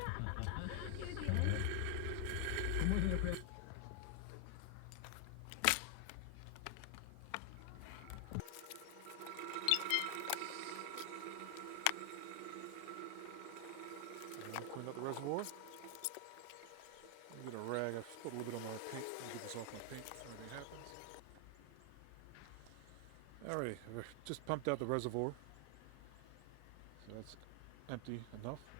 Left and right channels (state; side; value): different; both; correlation 0.00